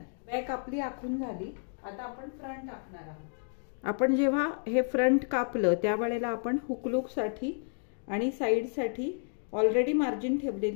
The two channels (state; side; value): silent; right; 57 dB below the other